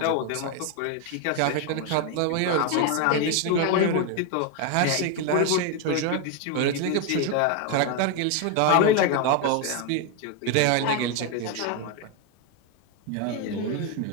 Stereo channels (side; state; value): both; different; correlation 0.01